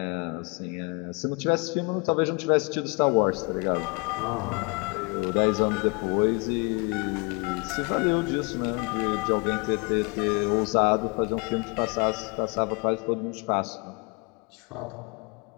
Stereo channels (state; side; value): quieter; right; 31.6 dB